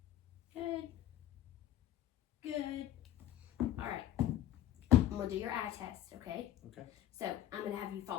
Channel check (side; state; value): right; quieter; 12.7 dB